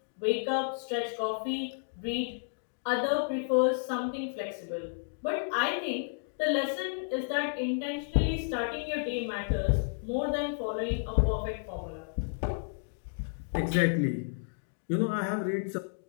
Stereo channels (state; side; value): silent; right; digital silence